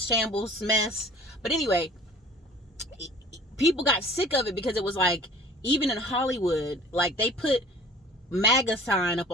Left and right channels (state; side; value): normal; both; correlation 0.47